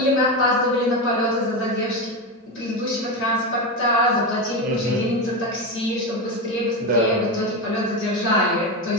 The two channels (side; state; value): both; normal; correlation 0.16